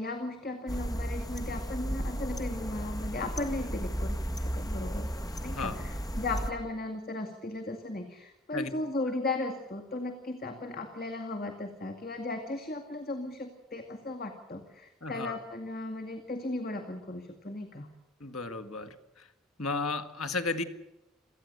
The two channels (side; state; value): both; normal; correlation 0.55